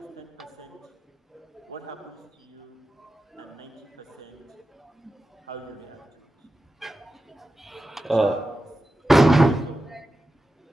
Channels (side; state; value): both; normal; correlation 0.92